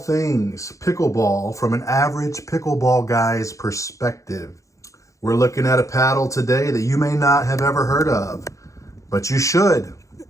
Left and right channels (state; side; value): late; right; 0.15 ms